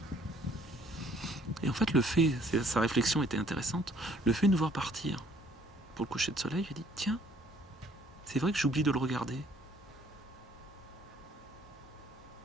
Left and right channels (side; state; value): both; normal; correlation 0.60